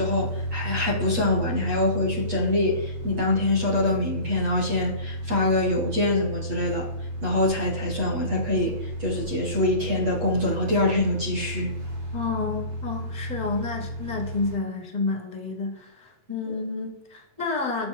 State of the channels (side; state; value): left; late; 8.3 ms